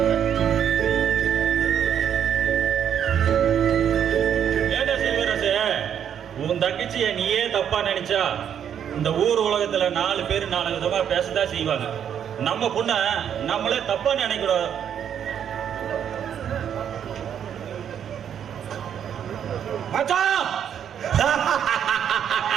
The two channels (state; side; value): quieter; left; 8.9 dB